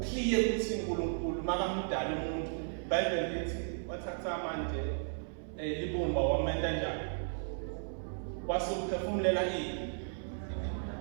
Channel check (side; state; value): left; silent; 55 dB below the other